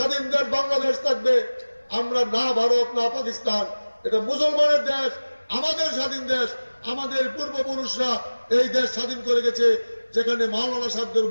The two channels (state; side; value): inverted; both; correlation -1.00